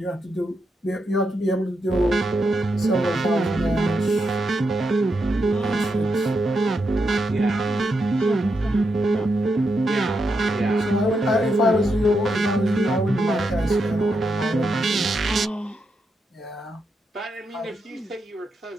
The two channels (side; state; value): both; normal; correlation 0.83